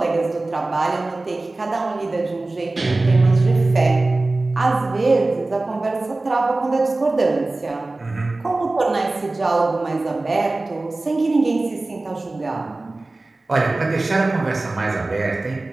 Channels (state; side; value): quieter; left; 3.1 dB